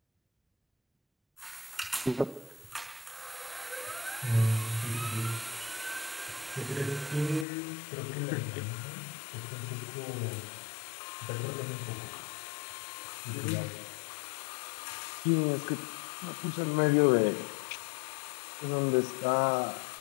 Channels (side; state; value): right; drops out; at 7.5 s